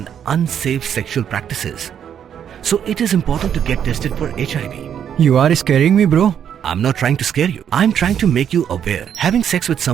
unsafe sexual practices. So it is important to get tested for HIV. You are scaring me, bro. I'm not trying to scare you. I'm trying to make you aware. Having sex with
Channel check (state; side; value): quieter; left; 8.9 dB